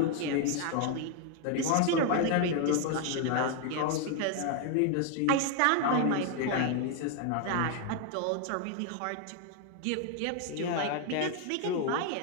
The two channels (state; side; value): different; both; correlation 0.00